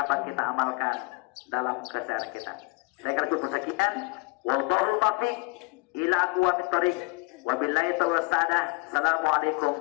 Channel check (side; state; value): right; quieter; 27.3 dB